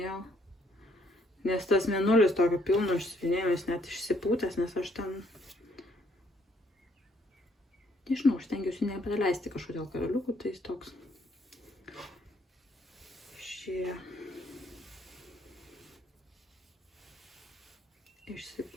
nes tas mėnulis tokio pilno išsivinėjau, jis net išsipūtęs, nes aš ten, nežinau, aš stengiuosi nepraleisti kažkodėl karaliukų, tai jis toks.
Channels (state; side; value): normal; both; correlation 0.69